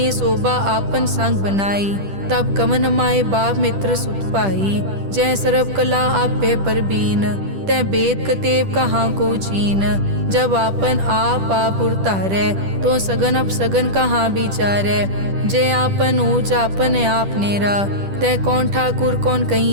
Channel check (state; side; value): late; left; 10 ms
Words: शोभा आपन संग बनाई, तब कवन माए बाप मित्र सुत पाई। जय सर्व कला आपे परबीन, तै वेद कतेब कहाँ को चीन। जब आपन आप उरतारै, तो सगन अपसगन कहाँ विचारै। जय आपन ऊंच आपन आप नेरा, तै कौन ठाकुर कौन